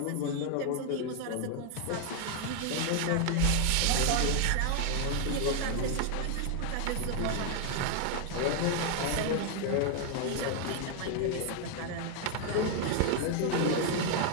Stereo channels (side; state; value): both; different; correlation 0.00